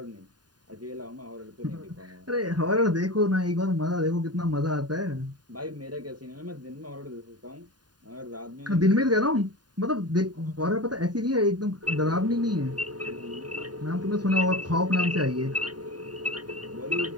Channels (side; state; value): left; late; 0.70 ms